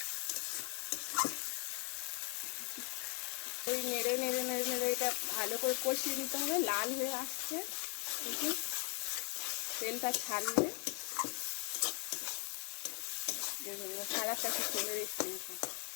ওই নেড়ে নেড়ে নেড়ে নেড়ে এটা ভালো করে কষিয়ে নিতে হবে। লাল হয়ে আসছে, দেখুন তেলটা ছাড়লে কালারটা খুব সুন্দর এসছে।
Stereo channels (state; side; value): quieter; right; 34.7 dB